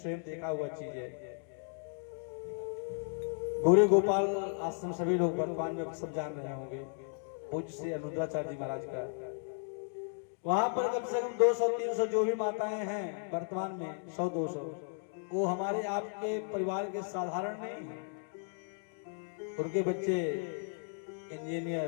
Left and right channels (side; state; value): right; silent; 55 dB below the other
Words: देखा हुआ चीज है। गौरी गोपाल आश्रम सभी लोग वर्तमान में सब जान रहे होंगे, पूज्य श्री अनुद्राचार्य जी महाराज का। वहां पर कम से कम 200-300 जो भी माताएं हैं वर्तमान में 100-200, वो हमारे आपके परिवार के साधारण नहीं है। उनके बच्चे